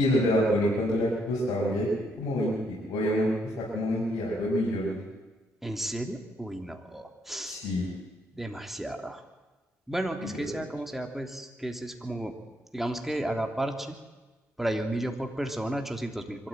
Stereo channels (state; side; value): normal; both; correlation 0.74